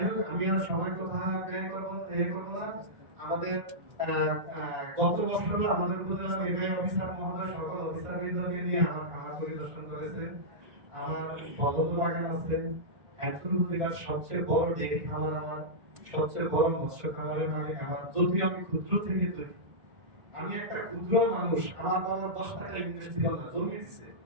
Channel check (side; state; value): left; late; 1.9 ms